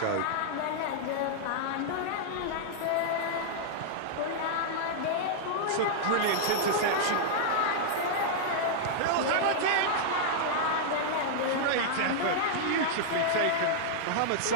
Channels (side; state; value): both; different; correlation -0.01